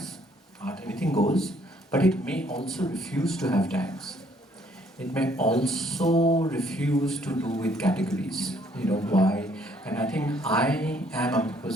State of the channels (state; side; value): normal; both; correlation 0.65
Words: Art, anything goes, but it may also refuse to have tags. It may also refuse to do with categories. Why? And I think